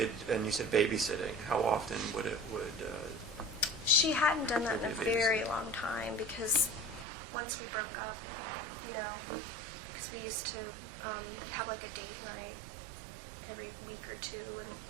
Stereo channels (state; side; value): drops out; left; at 7.1 s